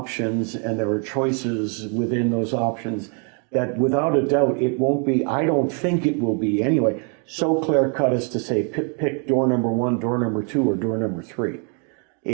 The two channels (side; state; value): left; quieter; 39.5 dB